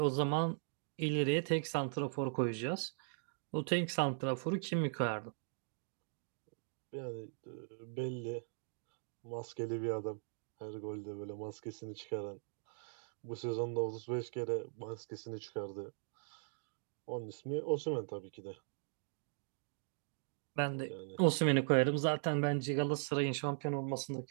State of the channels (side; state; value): left; silent; digital silence